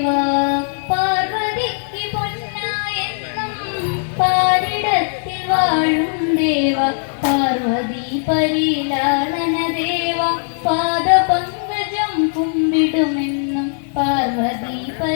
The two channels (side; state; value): right; silent; 67 dB below the other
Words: പാർവതിക്ക് പൊന്നായെന്നും പാരിടത്തിൽ വാഴും ദേവാ, പാർവതി പരിലാളന ദേവാ, പാദപങ്കജം കുമ്പിടുമെന്നും പാർവതി